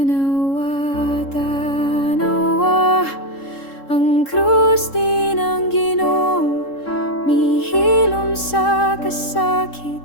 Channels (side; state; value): right; late; 3.7 ms